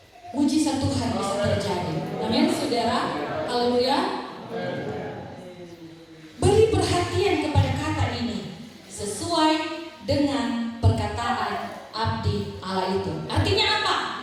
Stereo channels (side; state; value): both; identical; correlation 1.00